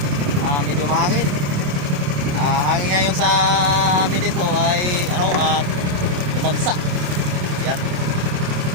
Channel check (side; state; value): left; late; 27 ms